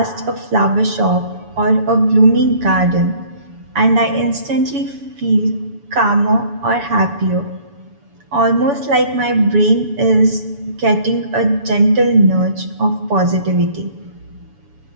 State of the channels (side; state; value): left; late; 7.0 ms